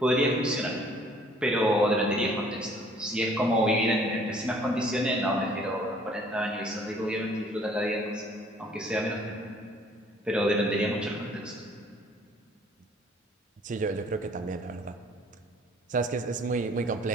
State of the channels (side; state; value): both; normal; correlation 0.57